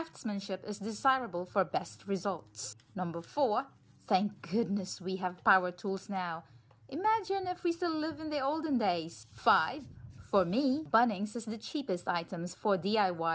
is desirable for best results. Number 4, thank goodness we have power tools now. Imagine if we still live in the olden days. 5, for me, Bunnings is the cheapest items for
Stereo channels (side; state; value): both; identical; correlation 1.00